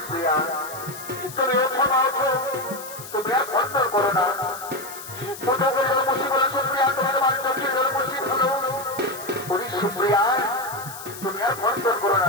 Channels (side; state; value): left; noise; hiss, 13 dB below the sound